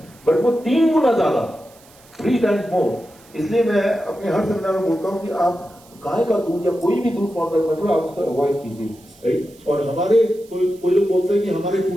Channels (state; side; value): noise; right; hiss, 27 dB below the sound